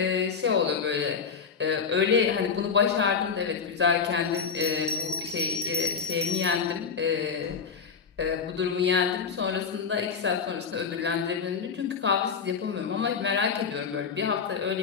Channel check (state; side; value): quieter; right; 6.0 dB